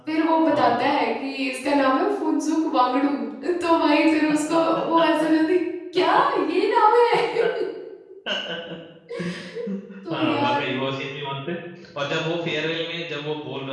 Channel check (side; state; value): both; identical; correlation 1.00